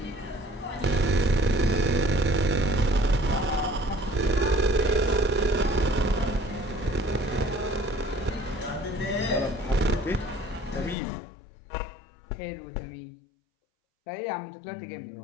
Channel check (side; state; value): right; drops out; at 11.0 s